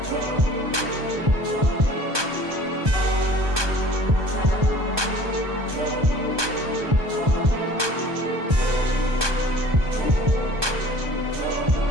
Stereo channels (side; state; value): left; late; 1.2 ms